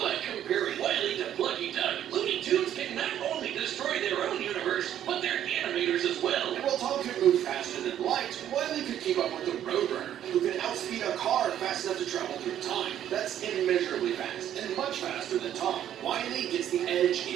comparing Wile to Plucky Duck, Looney Tunes can not only destroy their own universe, but their animators as well. And while Tom could move faster than light, Wile could keep up with the Roadrunner, who could outspeed a car fast enough to travel through time. That's immeasurably fast, and much faster than Tom. Wile gets the edge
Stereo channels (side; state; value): left; quieter; 10.8 dB